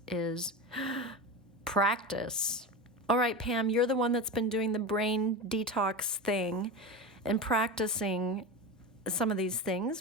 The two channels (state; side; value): normal; both; correlation 0.24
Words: is practice. All right, Pam, you're the one that's been doing the brain detox thing and practicing some of these